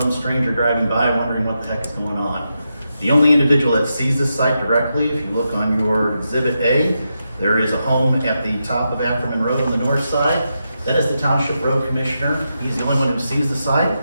stranger driving by wondering what the heck is going on. The only individual that sees this site directly, if you look on your Exhibit A, there is a home at the top of Ackerman Road on the north side. That is the Township Road Commissioner. He's the only one who sees the site.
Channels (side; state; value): both; inverted; correlation -0.86